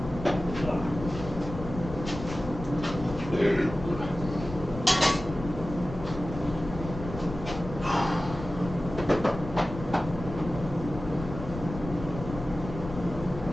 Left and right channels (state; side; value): noise; left; rumble, 10 dB below the sound